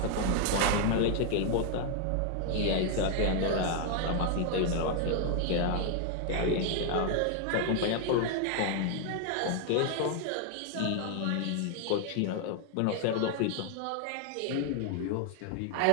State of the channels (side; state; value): both; different; correlation 0.00